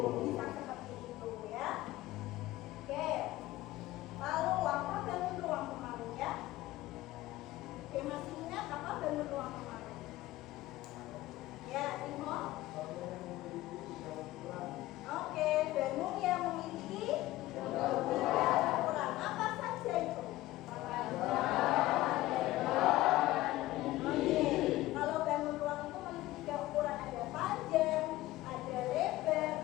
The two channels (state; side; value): quieter; right; 16.9 dB